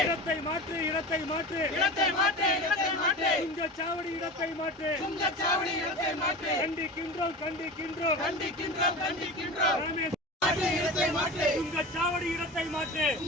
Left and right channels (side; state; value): both; normal; correlation 0.30